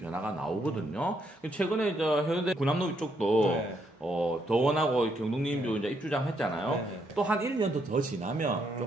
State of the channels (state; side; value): normal; both; correlation 0.75